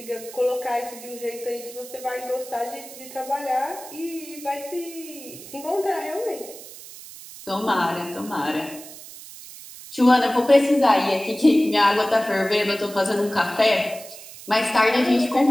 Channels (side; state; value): right; noise; hiss, 16 dB below the sound